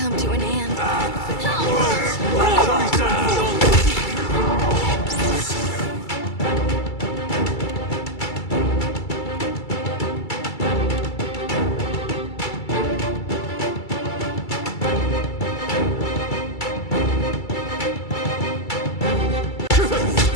to an end.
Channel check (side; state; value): right; late; 2.3 ms